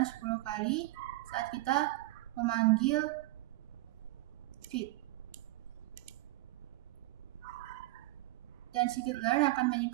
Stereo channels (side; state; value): left; quieter; 18.7 dB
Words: 10 kali saat kita memanggil fit. Dan scikit-learn akan